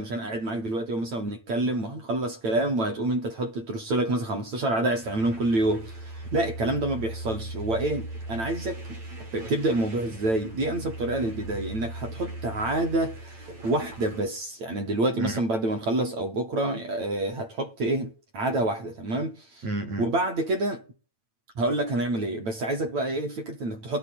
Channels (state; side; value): late; left; 8.9 ms